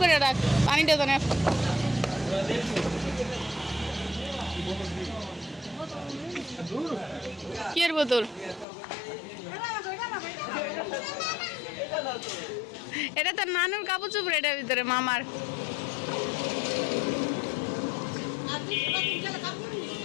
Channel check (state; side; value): drops out; right; at 8.7 s